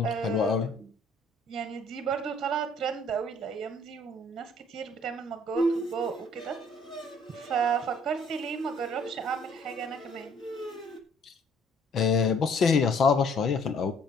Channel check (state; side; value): normal; both; correlation 0.59